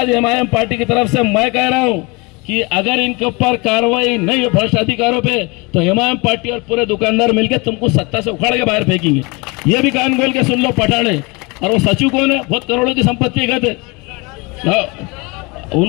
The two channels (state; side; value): quieter; right; 27.0 dB